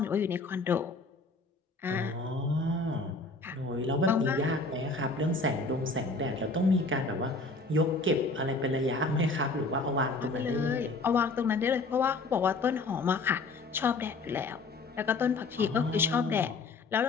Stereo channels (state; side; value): quieter; right; 3.5 dB